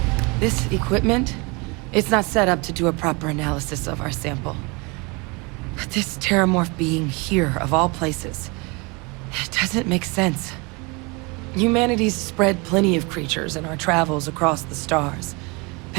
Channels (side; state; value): left; quieter; 28.4 dB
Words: This equipment, it's not set up to do a proper analysis of our sample. But this terramorph being here, of all places, it doesn't make sense. Humanity's spread plenty of creatures in our travels across the stars.